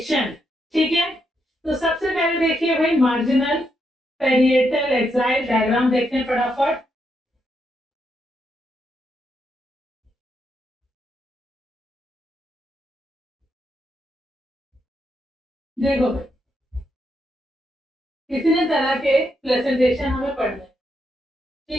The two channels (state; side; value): normal; both; correlation 0.80